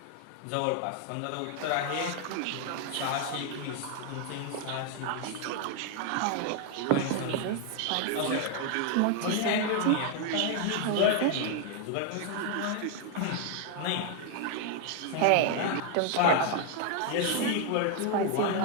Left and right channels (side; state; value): both; different; correlation 0.00